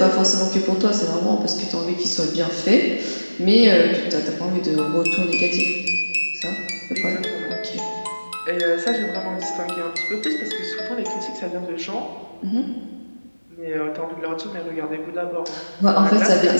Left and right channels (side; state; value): both; inverted; correlation -1.00